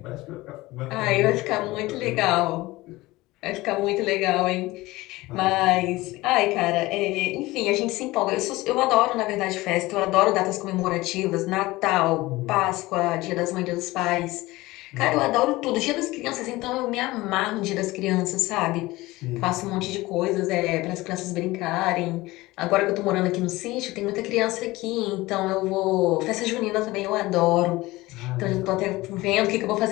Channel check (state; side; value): quieter; right; 19.6 dB